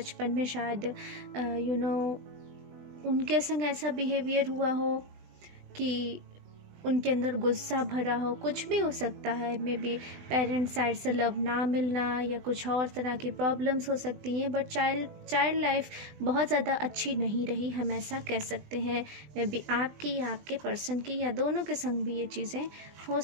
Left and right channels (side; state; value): left; late; 20 ms